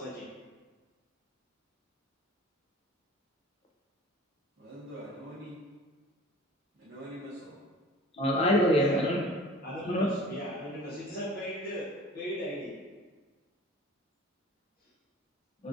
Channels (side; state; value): both; normal; correlation 0.44